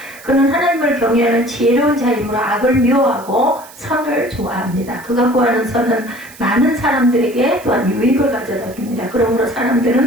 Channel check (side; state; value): right; noise; hiss, 21 dB below the sound